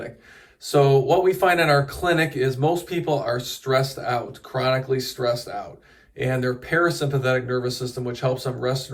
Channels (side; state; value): both; identical; correlation 1.00